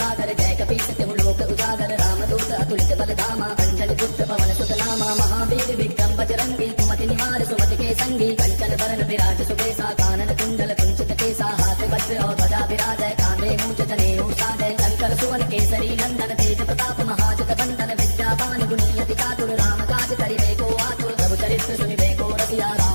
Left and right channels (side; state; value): both; inverted; correlation -1.00